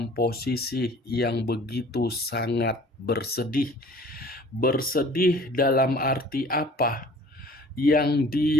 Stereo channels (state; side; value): normal; both; correlation 0.49